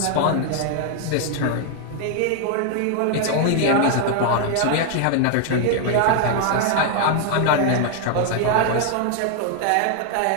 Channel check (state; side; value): different; both; correlation 0.00